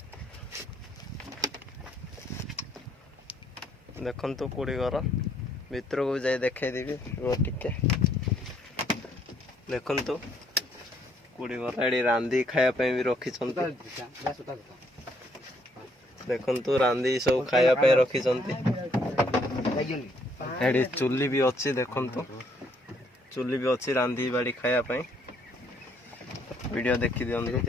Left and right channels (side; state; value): both; normal; correlation 0.68